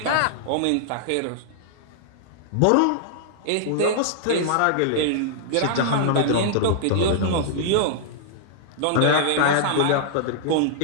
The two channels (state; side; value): different; both; correlation -0.01